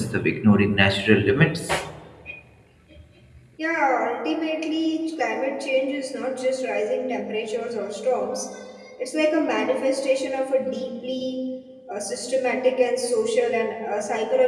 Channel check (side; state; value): both; identical; correlation 1.00